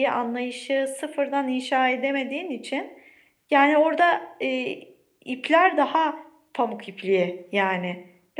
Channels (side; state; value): both; identical; correlation 1.00